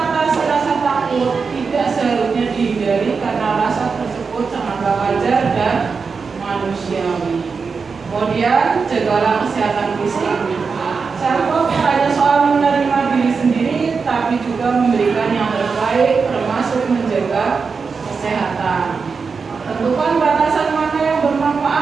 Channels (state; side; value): quieter; left; 5.1 dB